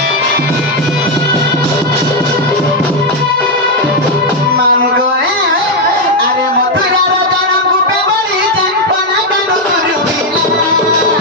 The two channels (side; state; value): both; normal; correlation 0.03